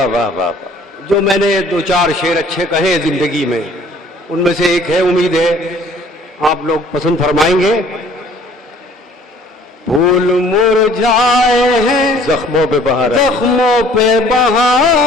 वाह वाह वाह। जो मैंने दो चार शेर अच्छे कहे जिंदगी में, उनमें से एक है, उम्मीद है आप लोग पसंद फरमाएंगे। फूल मुरझाए हैं, जख्मों पे बहार आई। जख्मों पे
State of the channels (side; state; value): both; normal; correlation 0.54